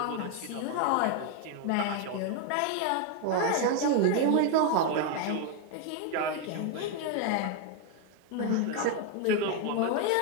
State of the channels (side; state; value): both; different; correlation 0.01